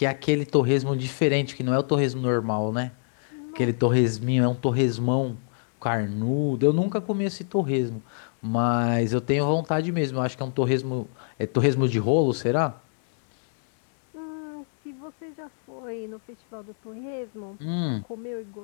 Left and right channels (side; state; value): right; silent; 61 dB below the other